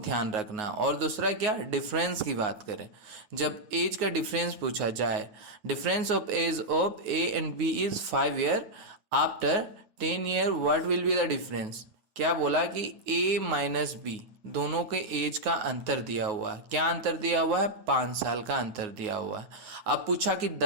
रखना। और दूसरा क्या, डिफरेंस की बात करें, जब एज का डिफरेंस पूछा जाए, difference of age of A and B is 5 year. After 10 year what will be the difference. क्या बोला कि ए माइनस बी दोनों के एज का अंतर दिया हुआ है। क्या अंतर दिया हुआ है, 5 साल का अंतर दिया हुआ है। अब पूछा कि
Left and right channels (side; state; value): left; late; 9.5 ms